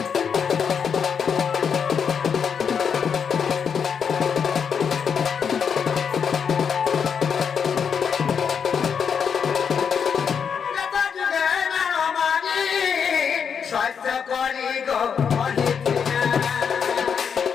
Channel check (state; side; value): quieter; right; 6.9 dB